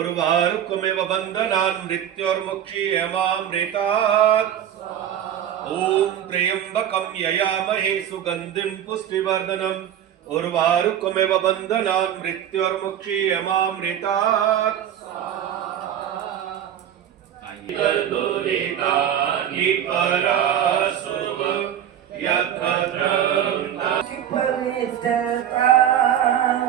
बन्धनान् मृत्युर्मुक्षीयमामृतात् ओम त्र्यंबकं ययामहे सुगंधिं पुष्टिवर्धनम् उर्वारुकमिव बन्धनान् मृत्युर्मुक्षीयमामृतात् पवित्रता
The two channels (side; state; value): left; quieter; 10.1 dB